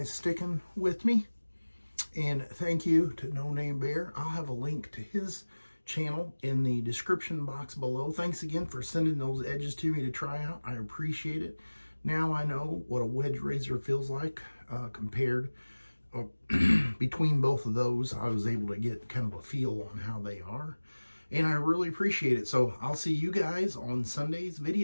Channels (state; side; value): inverted; both; correlation -1.00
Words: sticking with me. And thank you to No Name Bear. I'll have a link to his channel in the description box below. Thanks again for sending those edges to me to try out. I appreciate it. Now I know what a wedge razor feels like compared between both of those. I was able to get kind of a feel on how they are. And I really appreciate it. So I'll see you guys on Sunday's